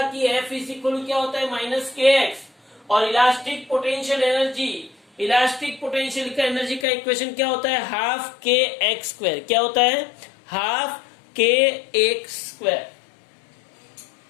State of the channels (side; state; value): right; drops out; at 6.9 s